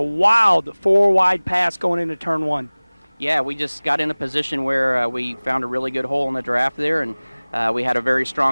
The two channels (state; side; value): inverted; both; correlation -1.00